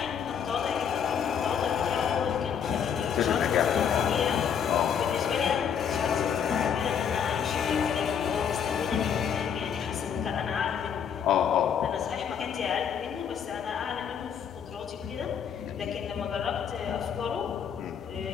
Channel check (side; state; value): right; quieter; 7.8 dB